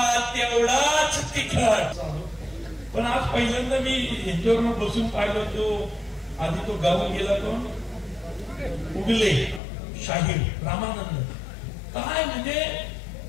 तेवढाच तिखट. पण आज पहिल्यांदा मी यांच्यावर बसून पाहिलं, तो आधी तो गावून गेला, कोण उगले शाहीर रामानंद. काय म्हणजे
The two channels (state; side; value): drops out; right; at 9.6 s